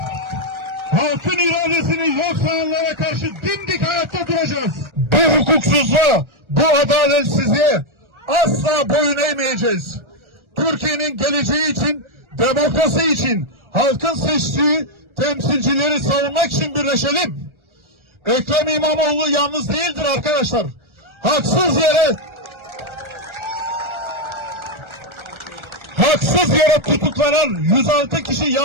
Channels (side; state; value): left; late; 1.4 ms